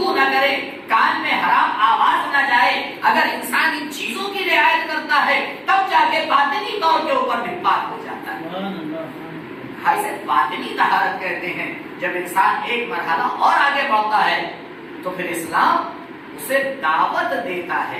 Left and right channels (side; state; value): both; identical; correlation 1.00